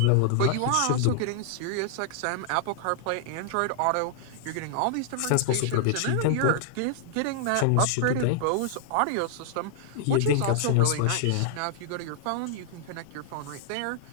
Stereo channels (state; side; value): different; both; correlation -0.01